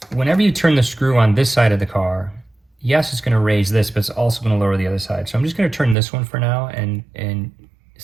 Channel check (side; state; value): left; drops out; at 6.0 s